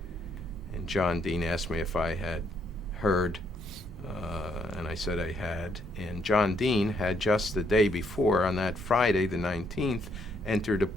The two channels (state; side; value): normal; both; correlation 0.71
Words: And John Dean asked me if I had heard, and I said I had. And John Dean had just the day before, on that Friday, the 19th, entered a